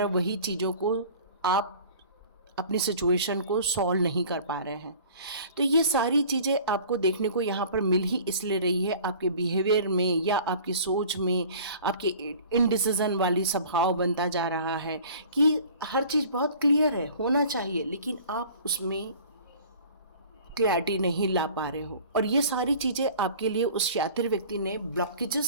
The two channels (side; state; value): both; inverted; correlation -0.46